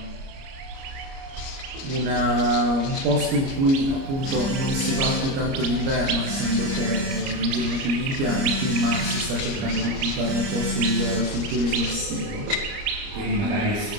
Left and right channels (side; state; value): left; late; 30 ms